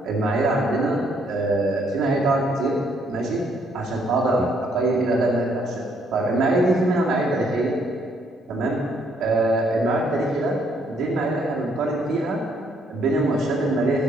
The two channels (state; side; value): normal; both; correlation 0.69